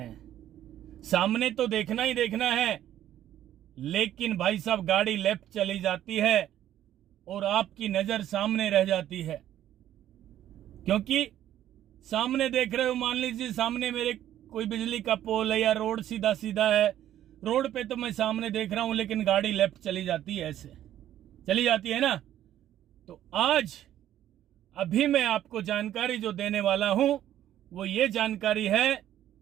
सामने तो देखना ही देखना है, लेकिन भाई साहब गाड़ी लेफ्ट चली जाती है और आपकी नजर सामने रह जाती है, क्योंकि सामने देख रहे हो। मान लीजिए सामने मेरे कोई बिजली का पोल है या रोड सीधा सीधा है, रोड पे तो मैं सामने देख रहा हूं, लेकिन गाड़ी लेफ्ट चली जाती है, ऐसे चली जाती है ना। तो आज अभी मैं आपको जानकारी जो देने वाला हूं वो ये जानकारी है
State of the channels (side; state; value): left; quieter; 11.9 dB